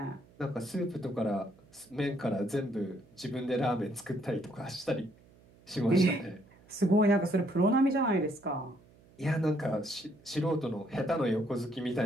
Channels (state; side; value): noise; right; hum, 27 dB below the sound